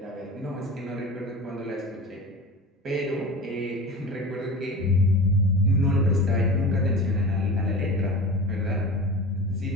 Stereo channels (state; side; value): normal; both; correlation 0.33